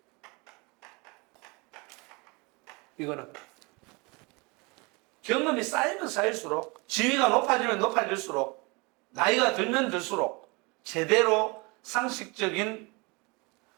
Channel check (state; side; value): quieter; left; 28.0 dB